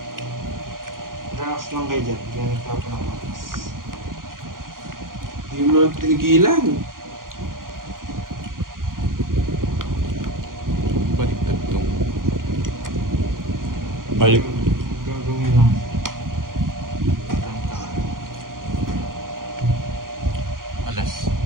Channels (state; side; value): late; left; 0.91 ms